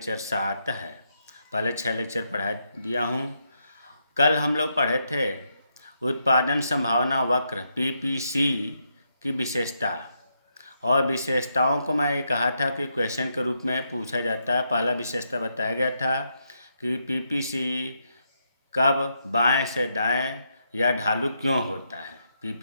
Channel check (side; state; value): both; inverted; correlation -0.80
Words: 7 है। पहले 6 लेक्चर पढ़ा दिया हूँ। कल हम लोग पढ़े थे उत्पादन संभावना वक्र पीपीसी की विशेषता, और विशेषताओं को मैं ये कहा था कि क्वेश्चन के रूप में पूछा जाता है। पहला विशेषता बताया गया था कि पीपीसी कब बाएं से दाएं या ढालू क्यों होता है।